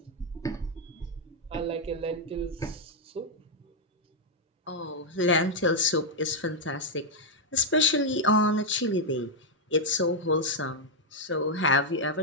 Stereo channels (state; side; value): normal; both; correlation -0.02